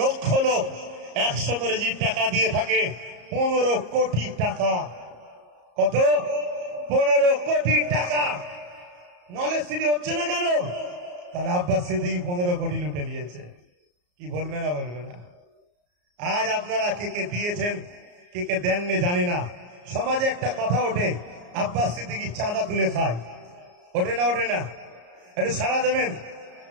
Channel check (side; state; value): left; late; 34 ms